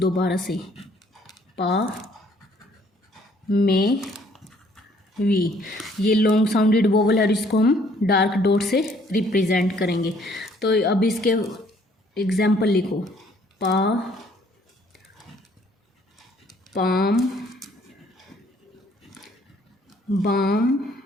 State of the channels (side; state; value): both; normal; correlation 0.62